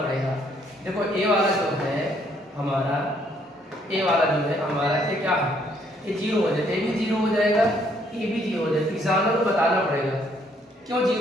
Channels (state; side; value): normal; both; correlation 0.68